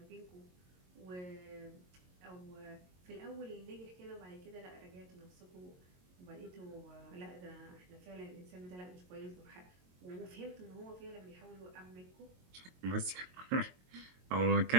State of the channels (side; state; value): left; late; 22 ms